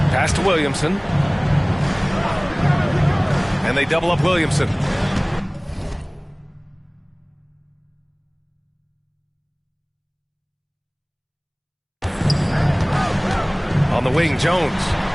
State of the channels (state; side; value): identical; both; correlation 1.00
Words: Pass to Williamson. And they double up Williamson. On the wing, Jones.